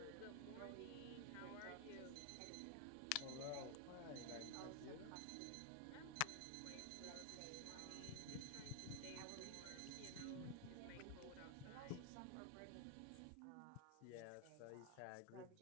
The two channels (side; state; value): both; different; correlation 0.00